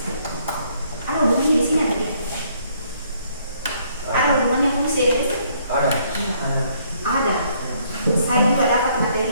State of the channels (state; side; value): inverted; both; correlation -0.66